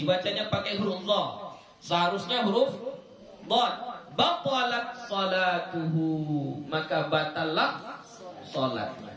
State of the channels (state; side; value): identical; both; correlation 1.00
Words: pakai huruf dha. Seharusnya huruf dhad. Batalat salatuhu, maka batallah salatnya.